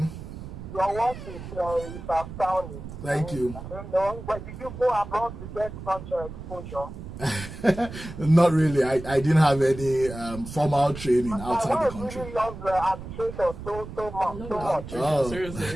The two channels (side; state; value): right; noise; rumble, 11 dB below the sound